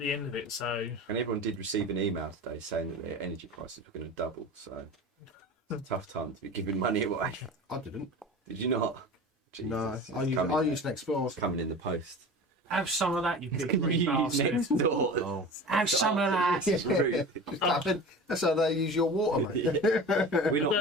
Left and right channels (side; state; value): both; normal; correlation 0.35